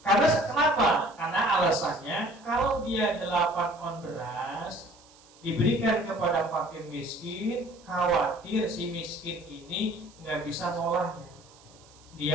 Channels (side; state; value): right; noise; hiss, 26 dB below the sound